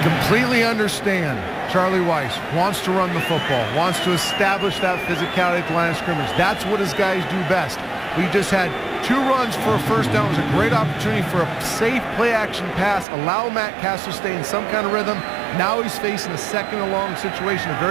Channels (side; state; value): left; drops out; at 13.1 s